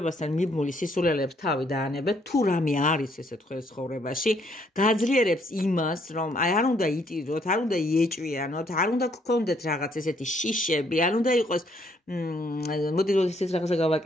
მიბმული სისულელეებს თავი დაანებეთ, თუ რამე არის ესე თქვენს ცხოვრებაში, გააძლიერებს იმას, რომ აი არ უნდა იტიროთ, არ უნდა იეჭვიანოთ, არ უნდა გქონდეთ რაღაც ესეთი შიშები, არ უნდა იყოს მოდი რომ ისეთ რაღაცა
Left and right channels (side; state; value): both; normal; correlation 0.68